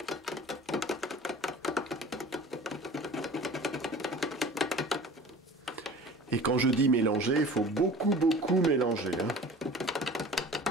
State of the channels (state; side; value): normal; both; correlation 0.42